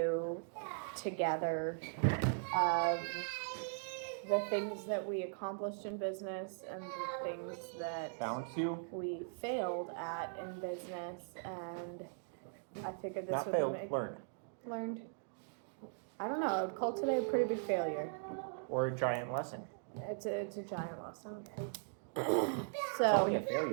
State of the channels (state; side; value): silent; left; digital silence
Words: together of the things that we accomplished in business and the things that we failed at in business, and I figured this Not would failed, make learned. I don't know, I would call today a pretty big failure. Or a giant lesson. It's a giant lesson. It's only a